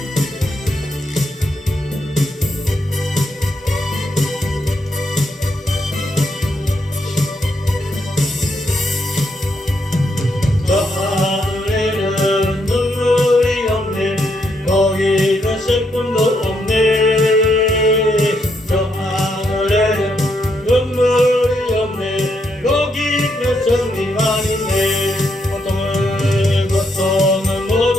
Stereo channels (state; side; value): normal; both; correlation 0.77